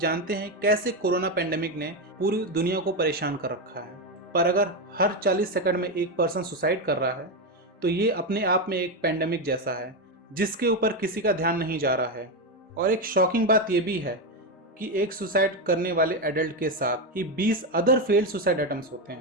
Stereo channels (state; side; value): normal; both; correlation 0.10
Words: हैं कैसे कोरोना पेंडेमिक ने पूरी दुनिया को परेशान कर रखा है, पर अगर हर 40 सेकंड में एक पर्सन सुसाइड कर रहा है तो ये अपने आप में एक पेंडेमिक जैसा है जिसके ऊपर किसी का ध्यान नहीं जा रहा है। और एक शॉकिंग बात यह भी है कि एक सुसाइड करने वाले एडल्ट के साथ ही 20 अदर फेल्ड सुसाइड अटेम्प्ट्स होते